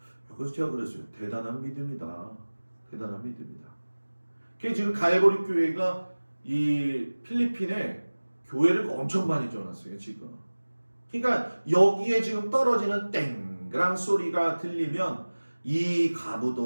그래서 제가 그랬어요. 대단한 믿음이다. 대단한 믿음이다. 그게 지금 갈보리 교회가 이 필리핀에 교회를 엄청 많이 지어놨어요. 지금. 그러니까 여기에 지금 떨어지는 땡그랑 소리가 들리면 이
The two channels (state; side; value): inverted; both; correlation -1.00